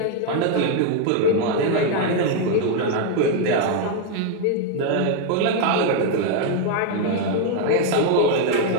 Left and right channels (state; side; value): different; both; correlation 0.01